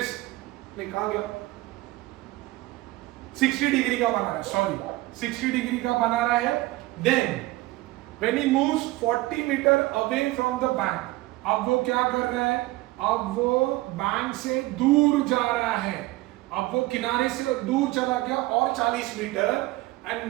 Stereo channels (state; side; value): quieter; left; 19.3 dB